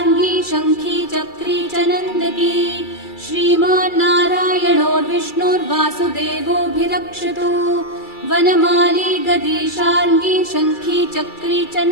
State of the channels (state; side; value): late; right; 2.3 ms